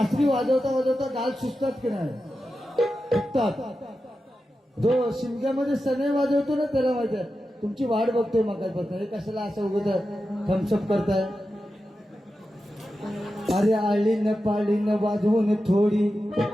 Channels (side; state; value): both; normal; correlation 0.91